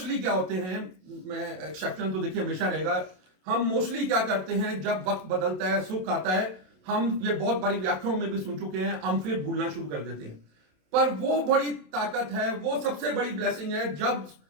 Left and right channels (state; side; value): late; left; 27 ms